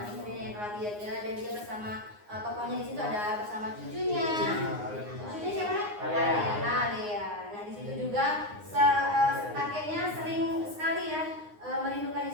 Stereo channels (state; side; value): late; left; 9.6 ms